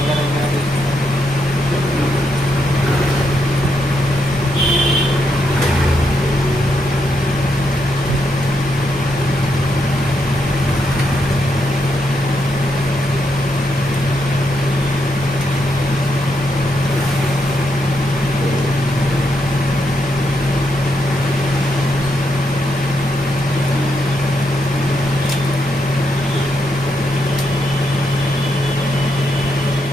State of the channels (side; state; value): both; normal; correlation 0.80